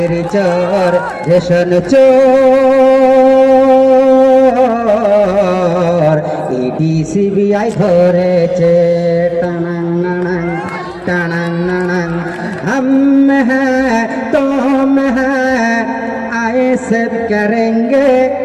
চোর রেশন চোর ইডি সিবিআই ধরেছে টানাং নানাং টানাং নানাং हम हैं तुम हैं आए सब करेंगे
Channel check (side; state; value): both; identical; correlation 1.00